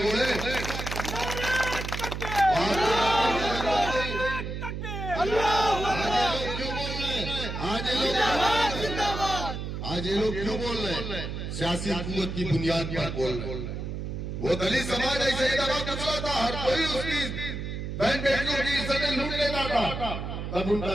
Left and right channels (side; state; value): right; noise; hum, 5 dB below the sound